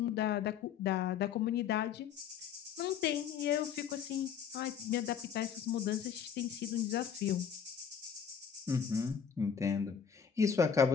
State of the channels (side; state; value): right; quieter; 7.6 dB